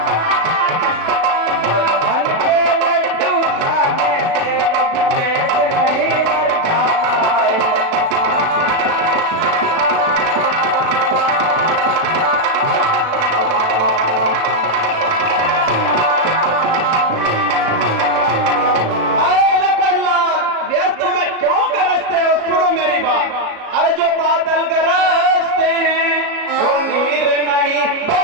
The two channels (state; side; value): late; left; 36 ms